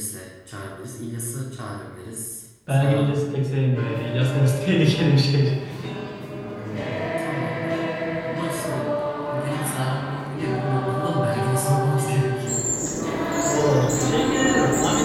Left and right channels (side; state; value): both; identical; correlation 1.00